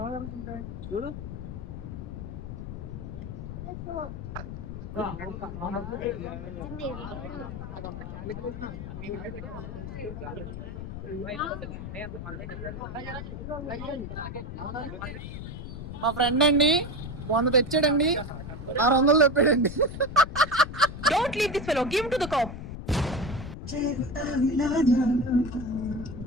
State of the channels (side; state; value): left; noise; rumble, 8 dB below the sound